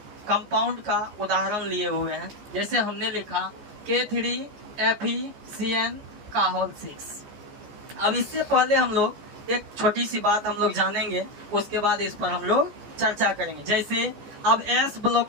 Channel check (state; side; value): late; left; 14 ms